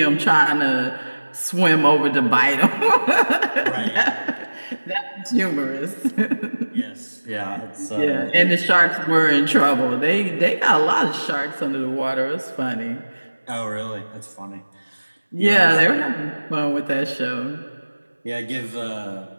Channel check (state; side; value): inverted; both; correlation -1.00